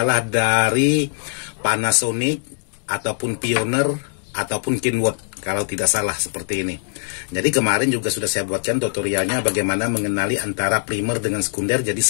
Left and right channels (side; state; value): right; silent; digital silence